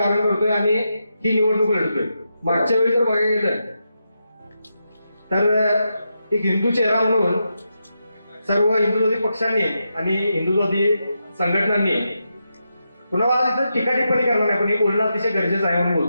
करतोय आणि ही निवडणूक लढतोय. मागच्या वेळी जर बघायला गेलं तर एक हिंदू चेहरा म्हणून सर्व हिंदुत्वादी पक्षांनी आणि हिंदुत्वादी संघटनांनी पुन्हा आज इथं टीका टिप्पणी करणार नाही, पण हे बोलणं अतिशय गरजेचं आहे म्हणून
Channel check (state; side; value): inverted; both; correlation -0.86